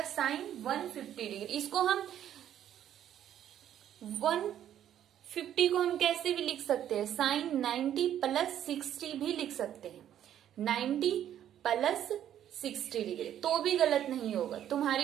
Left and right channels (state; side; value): quieter; left; 10.7 dB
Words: साइन 150 डिग्री। इसको हम 150 को हम कैसे भी लिख सकते हैं, साइन 90 प्लस 60 भी लिख सकते हैं, 90 प्लस 60 डिग्री, तो भी गलत नहीं होगा।